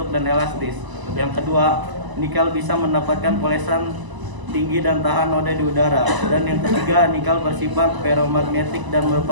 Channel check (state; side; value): late; left; 1.0 ms